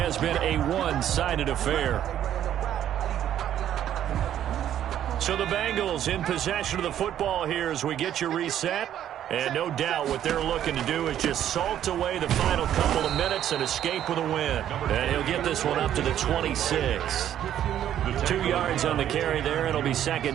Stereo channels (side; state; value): left; quieter; 10.9 dB